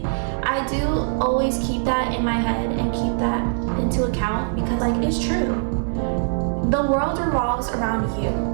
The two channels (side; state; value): left; silent; digital silence